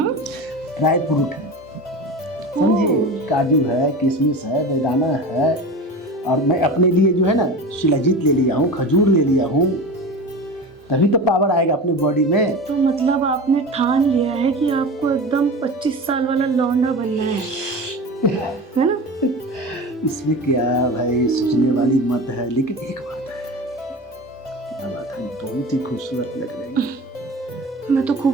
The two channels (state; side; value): normal; both; correlation 0.30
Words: ड्राई फ्रूट है, समझे, काजू है, किशमिश है, बेदाना है, और मैं अपने लिए जो है ना शिलाजीत ले लिया हूँ, खजूर ले लिया हूँ, तभी तो पावर आएगा अपने बॉडी में। तो मतलब आपने ठान लिया है कि आपको एकदम 25 साल वाला लौंडा बनना है ना? इसमें क्या भाई सोचने वाली मत है, लेकिन एक बात है, क्या बात है, बहुत ही खूबसूरत लग रही है। मैं तो